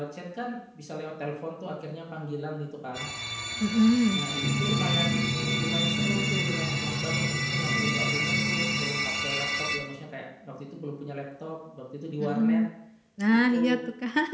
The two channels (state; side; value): identical; both; correlation 1.00